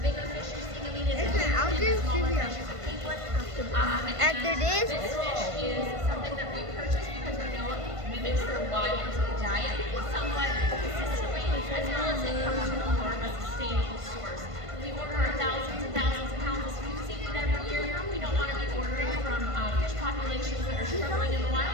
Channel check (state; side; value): late; left; 1.5 ms